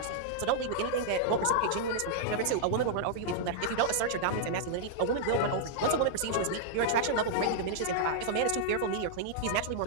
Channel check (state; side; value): different; both; correlation -0.01